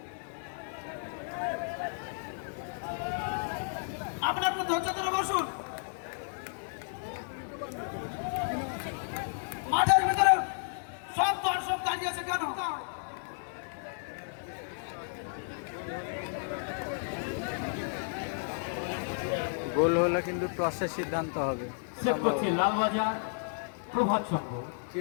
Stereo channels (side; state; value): right; silent; digital silence